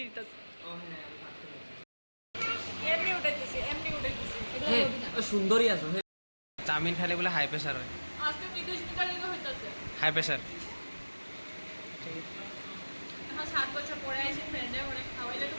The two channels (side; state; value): both; inverted; correlation -1.00